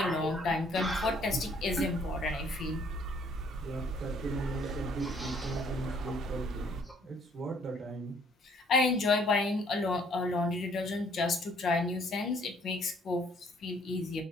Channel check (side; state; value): both; normal; correlation 0.62